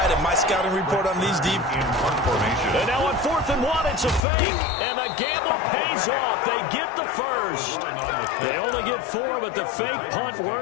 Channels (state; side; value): drops out; right; at 4.2 s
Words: and my scouting report on these deep. And now on 4th and 1, it's a fake. And the gamble pays off. They get the first. They only get 4, but the fake punt